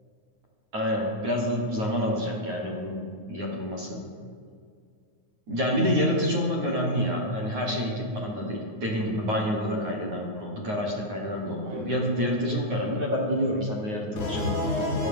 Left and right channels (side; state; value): left; late; 9.5 ms